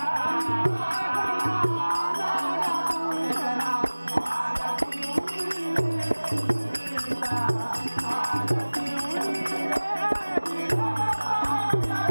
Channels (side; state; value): both; inverted; correlation -1.00